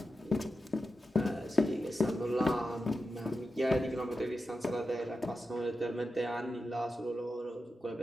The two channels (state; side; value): normal; both; correlation 0.90